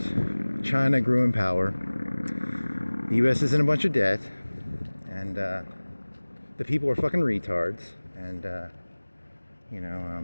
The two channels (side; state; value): both; inverted; correlation -1.00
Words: China grew in power, the U.S. is in a bunch of debt, and the people are fucking retards, and